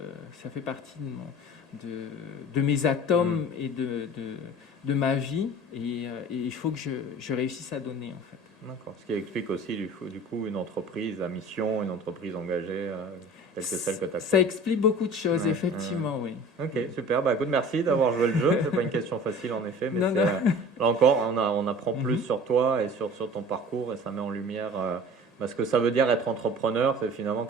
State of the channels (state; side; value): normal; both; correlation 0.42